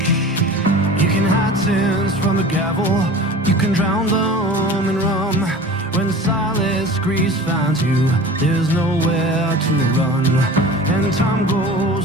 You can hide sins from the gavel, you can drown them in rum. When silence grease finds you, there's nowhere to run. And time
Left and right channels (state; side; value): normal; both; correlation 0.39